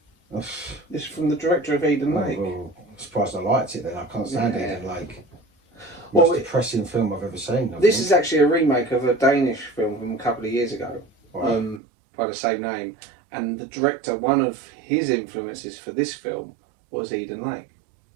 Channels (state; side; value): drops out; left; at 11.8 s